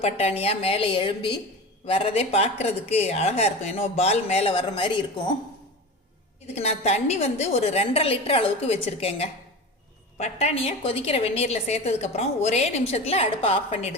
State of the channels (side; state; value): both; normal; correlation 0.29